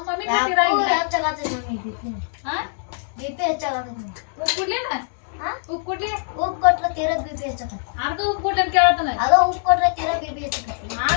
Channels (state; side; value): silent; right; digital silence